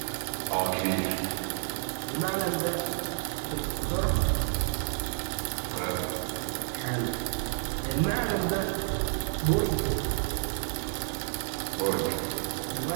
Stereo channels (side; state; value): left; silent; 58 dB below the other